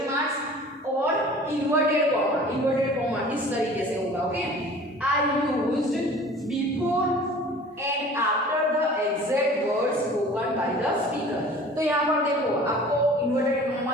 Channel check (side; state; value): both; normal; correlation 0.45